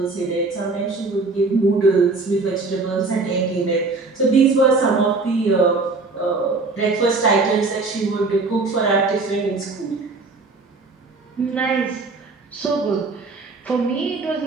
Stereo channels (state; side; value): quieter; left; 3.7 dB